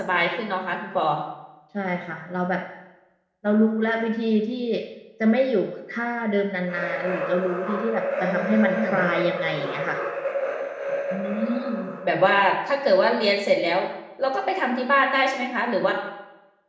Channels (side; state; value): both; identical; correlation 1.00